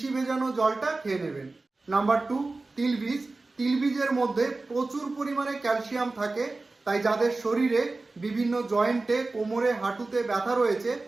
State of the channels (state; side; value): quieter; left; 3.4 dB